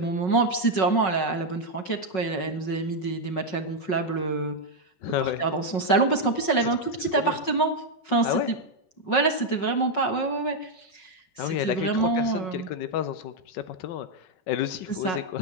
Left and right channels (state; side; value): late; right; 5.4 ms